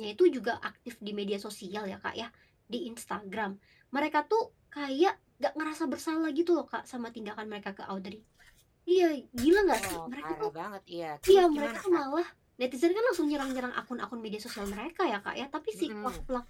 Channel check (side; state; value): both; identical; correlation 1.00